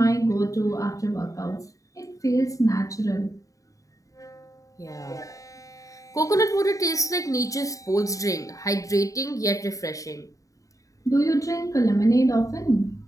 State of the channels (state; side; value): late; right; 0.16 ms